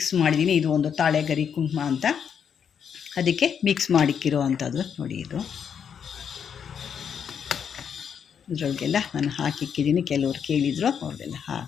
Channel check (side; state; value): right; quieter; 7.6 dB